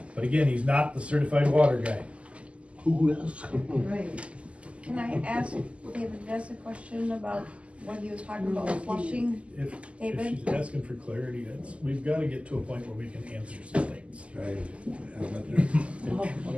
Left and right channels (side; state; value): left; late; 0.059 ms